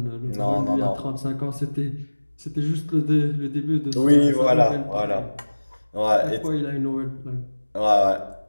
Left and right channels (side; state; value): both; inverted; correlation -1.00